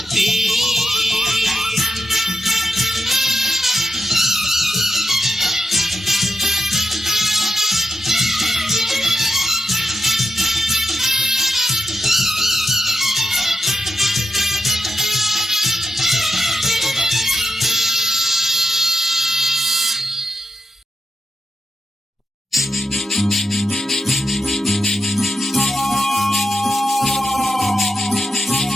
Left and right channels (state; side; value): normal; both; correlation 0.85